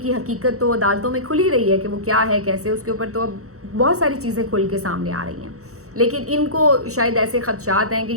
کی حقیقت تو عدالتوں میں کھلی رہی ہے کہ وہ کیا ہے کیسے، اس کے اوپر تو اب بہت ساری چیزیں کھل کے سامنے آ رہی ہیں، لیکن ان کو شاید ایسے خدشات ہیں کہ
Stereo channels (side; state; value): left; late; 0.65 ms